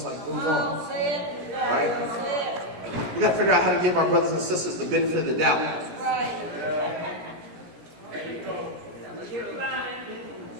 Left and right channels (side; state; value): left; late; 17 ms